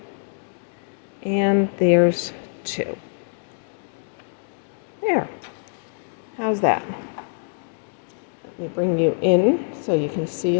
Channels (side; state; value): right; silent; digital silence